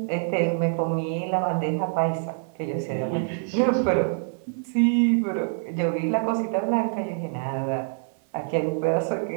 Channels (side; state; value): left; silent; 61 dB below the other